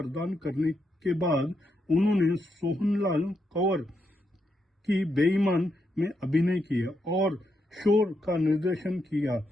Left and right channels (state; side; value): normal; both; correlation 0.82